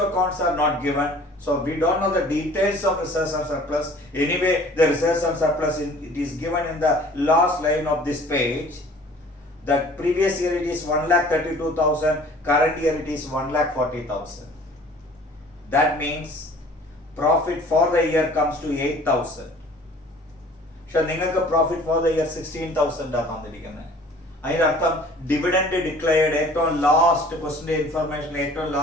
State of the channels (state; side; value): normal; both; correlation 0.50